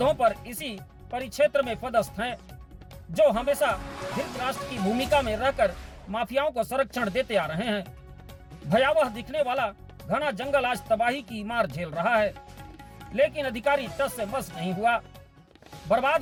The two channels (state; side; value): identical; both; correlation 1.00